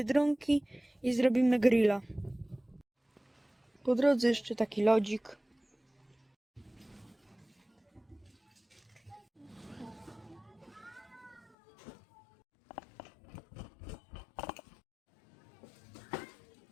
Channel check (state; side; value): drops out; right; at 11.5 s